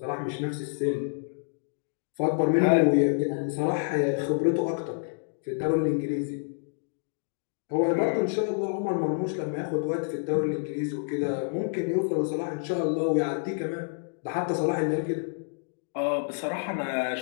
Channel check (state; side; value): silent; right; digital silence